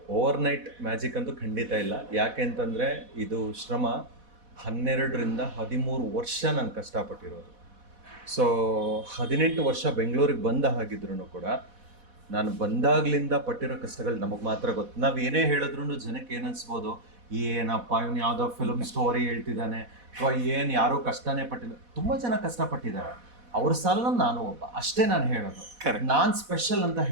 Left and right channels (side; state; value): left; late; 4.1 ms